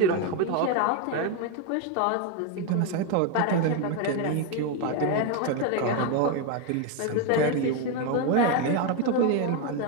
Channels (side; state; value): both; different; correlation 0.02